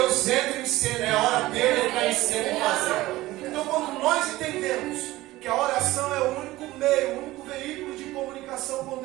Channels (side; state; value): left; quieter; 17.7 dB